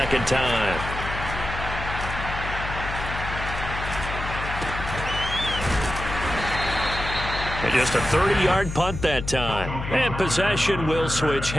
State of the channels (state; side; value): noise; left; hum, 7 dB below the sound